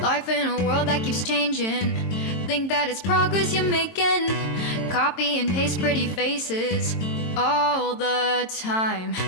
Life in a world that keeps changing. Think that it's progress you're making. Copy and paste pretty faces all the time.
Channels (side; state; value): right; late; 22 ms